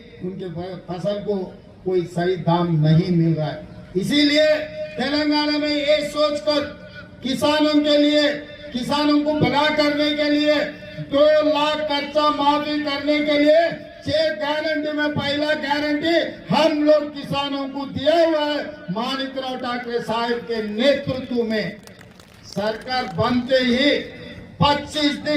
उनके फसल को कोई सही दाम नहीं मिल रहा है। इसीलिए तेलंगाना में ये सोचकर किसानों के लिए, किसानों को भला करने के लिए 2 लाख कर्जा माफी करने के लिए 6 गारंटी में पहला गारंटी हम लोग किसानों को दिया हुआ है। माणिकराव ठाकरे साहब के नेतृत्व में सरकार बनते ही 25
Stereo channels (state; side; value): identical; both; correlation 1.00